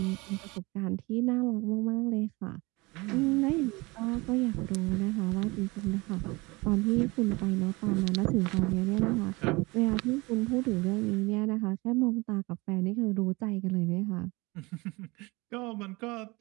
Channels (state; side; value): quieter; left; 24.2 dB